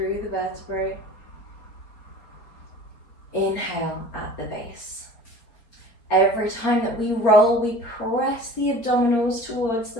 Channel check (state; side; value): late; right; 4.3 ms